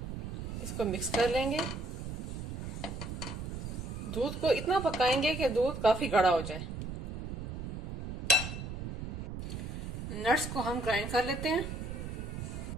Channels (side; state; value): right; noise; rumble, 6 dB below the sound